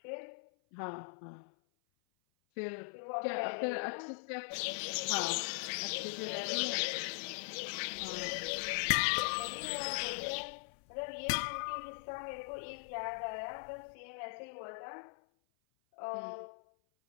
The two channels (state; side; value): silent; right; 51 dB below the other